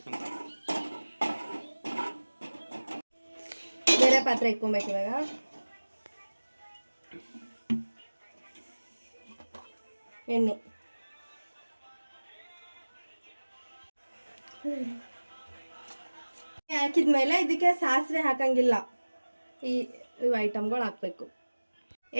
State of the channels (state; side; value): inverted; both; correlation -1.00